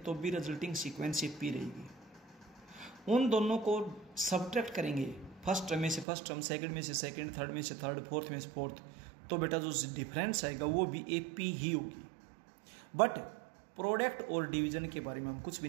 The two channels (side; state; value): left; drops out; at 6.1 s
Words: भी रिजल्टिंग सीक्वेंस एपी रहेगी। उन दोनों को सब्ट्रैक्ट करेंगे, फर्स्ट टर्म में से फर्स्ट टर्म, सेकंड में से सेकंड, थर्ड में से थर्ड, फोर्थ में से फोर्थ, तो बेटा जो डिफरेंस आएगा वो भी एपी ही होगी। बट प्रोडक्ट और डिवीजन के बारे में हम कुछ भी